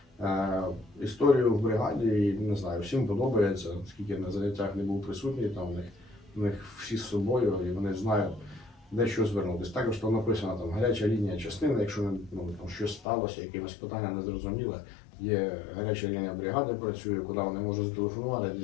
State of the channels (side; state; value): right; drops out; at 13.1 s